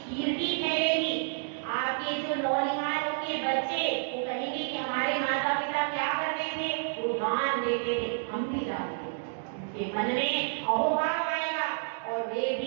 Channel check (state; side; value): silent; left; digital silence